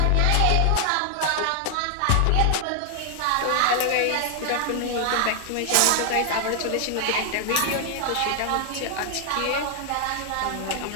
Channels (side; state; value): both; different; correlation 0.00